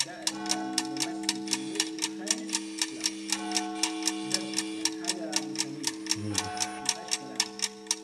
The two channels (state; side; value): identical; both; correlation 1.00